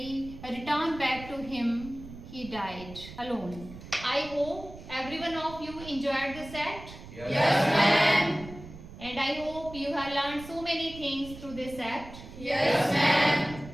returned back to him, he died alone. I hope every one of you enjoyed this act. Yes, ma'am. And I hope you have learned so many things through this act. Yes, ma'am.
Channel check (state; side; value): noise; right; rumble, 15 dB below the sound